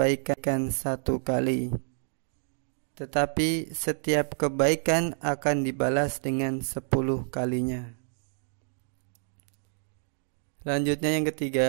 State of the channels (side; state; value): left; silent; digital silence